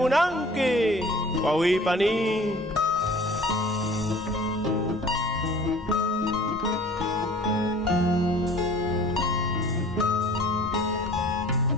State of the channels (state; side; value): normal; both; correlation 0.47